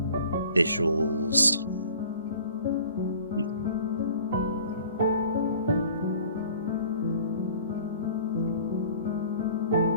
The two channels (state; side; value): inverted; both; correlation -0.49